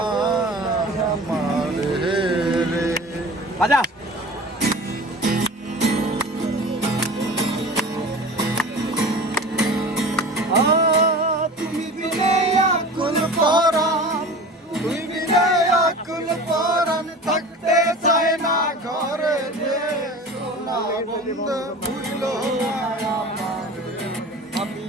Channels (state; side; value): normal; both; correlation 0.37